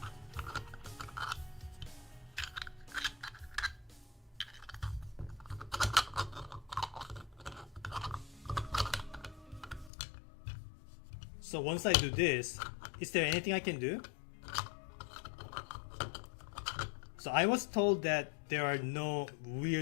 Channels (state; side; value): drops out; right; at 9.9 s